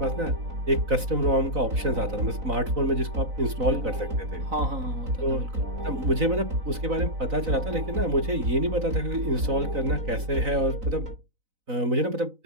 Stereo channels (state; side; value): late; left; 4.0 ms